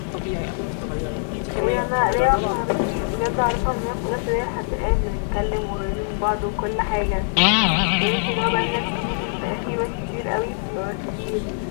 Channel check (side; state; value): right; silent; digital silence